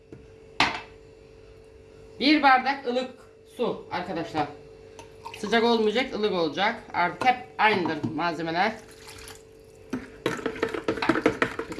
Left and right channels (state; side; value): identical; both; correlation 1.00